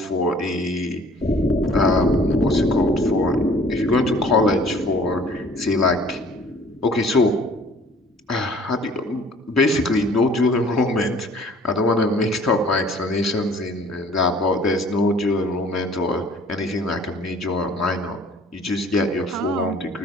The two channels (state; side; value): normal; both; correlation 0.53